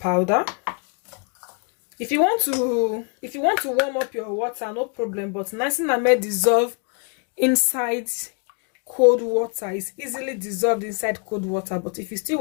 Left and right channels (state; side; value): quieter; right; 38.8 dB